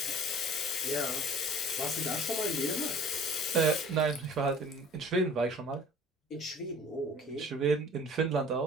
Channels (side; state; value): both; normal; correlation 0.48